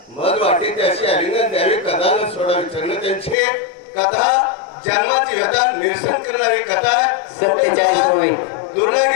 मग वाटे त्याशी आलिंगन द्यावे, कथा न सोडावी चरण त्यांची कथा, जन्माची व्यथा निरसन करणारी कथा. 47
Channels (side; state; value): right; drops out; at 3.4 s